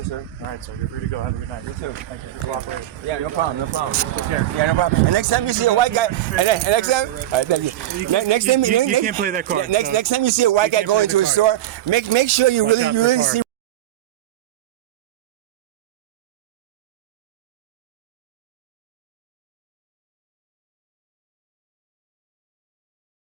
sir. All right, so you're free to go. Have a good night. You too. Thank you for your cooperation. Yeah, no problem. Take care. Yeah, no problem. And next time you see a white guy, next time, thank you. Next time, You can't play that card. Next time you see a white guy can't go play into the a store, card. make sure you Watch out for really card. see.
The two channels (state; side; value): quieter; left; 13.4 dB